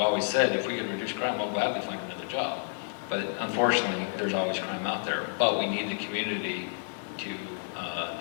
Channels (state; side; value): silent; right; digital silence